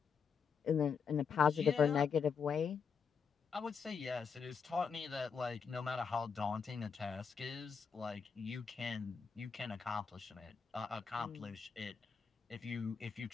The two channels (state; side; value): quieter; right; 6.1 dB